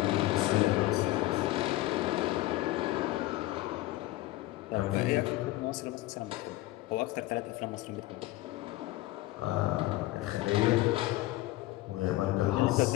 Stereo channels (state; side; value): quieter; right; 17.6 dB